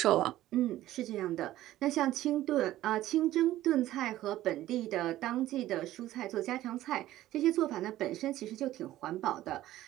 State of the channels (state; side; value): quieter; left; 14.6 dB